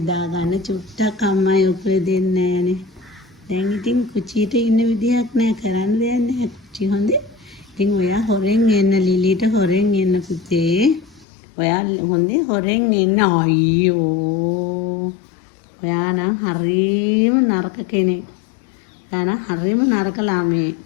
ගන්න චුට්ටක් අම්මයි උකුලේ දෙන්නේ නෑනේ දැන් ඉතින් කුචියට ඉන්න විදියක් නෑ කරන්න දෙයක් නෑ කුචි හොඳේ. ඉතින් ඔයා හොරෙන් එන්න ලිලිට හොරෙන් එන්න පුතේ. ඔයා හොඳේ හොරෙන් එන්න අයියෝ. ඔයා නම් හරිම නරක කෙනෙක්. ඔයා නම් හරිම නරක ළමයෙක්.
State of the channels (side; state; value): right; drops out; at 11.2 s